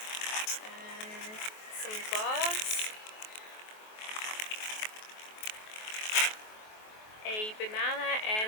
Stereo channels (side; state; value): right; late; 23 ms